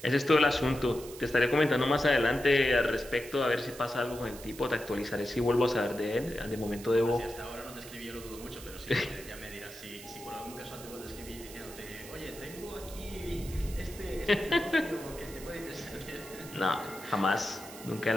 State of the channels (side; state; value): right; noise; hiss, 15 dB below the sound